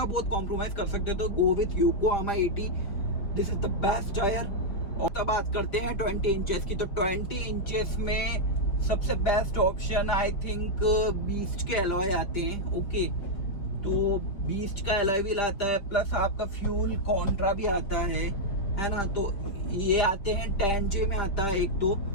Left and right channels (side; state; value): right; late; 5.0 ms